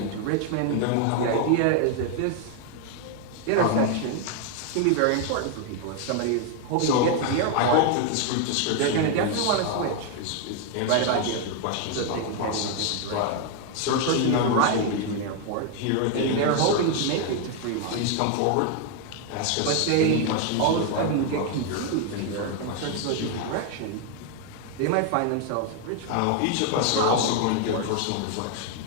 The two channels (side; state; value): both; different; correlation 0.01